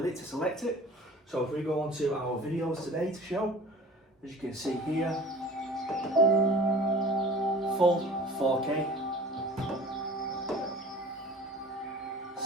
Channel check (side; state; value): both; normal; correlation 0.44